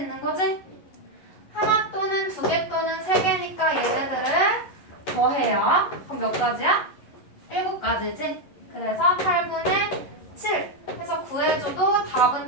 거지? 하나 또는 2개 또는 3개니까 얘네들을 더해요. 그럼 몇 가지야? 7가지지? 그래서 8분의 7 해서 구해줘도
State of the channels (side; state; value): right; late; 11 ms